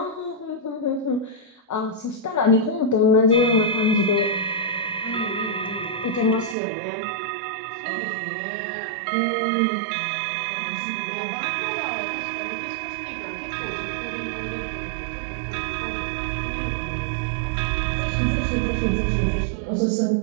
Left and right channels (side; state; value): left; drops out; at 6.6 s